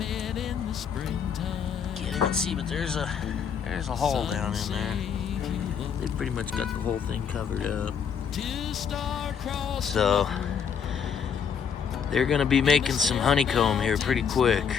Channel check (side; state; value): right; quieter; 7.1 dB